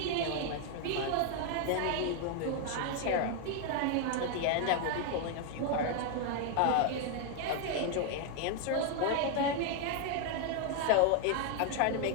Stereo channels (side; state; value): both; different; correlation 0.00